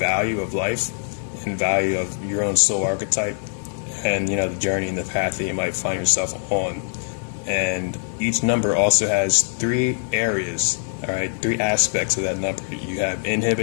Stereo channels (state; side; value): silent; right; 64 dB below the other